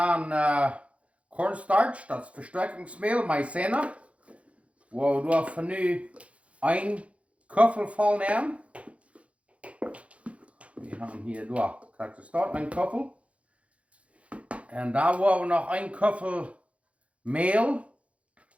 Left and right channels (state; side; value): late; left; 0.063 ms